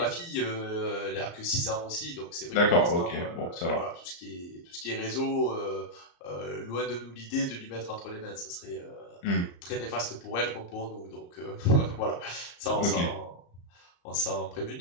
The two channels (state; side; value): late; right; 34 ms